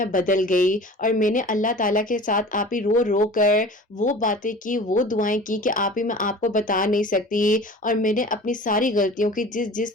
بدل گئی، اور میں نے اللہ تعالیٰ کے ساتھ آپ رو رو کر وہ باتیں کی، وہ دعائیں کی کہ میں آپ کو بتا نہیں سکتی، اور میں نے اپنی ساری غلطیوں کی جس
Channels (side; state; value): both; normal; correlation 0.40